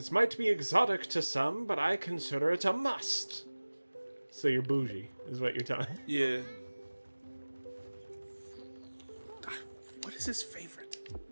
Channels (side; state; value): both; inverted; correlation -1.00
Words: might be exotic to some, but I consider it a must. So you're bougie, is what you're telling me. Yeah. What is his favorite?